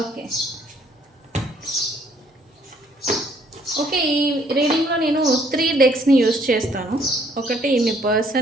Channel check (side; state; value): both; normal; correlation 0.64